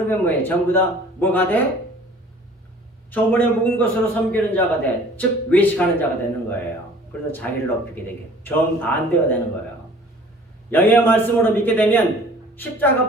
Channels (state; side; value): normal; both; correlation 0.50